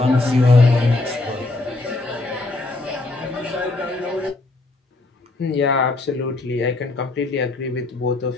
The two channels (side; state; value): right; quieter; 3.1 dB